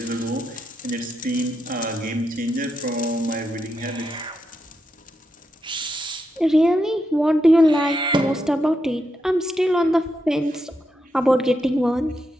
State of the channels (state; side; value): normal; both; correlation 0.84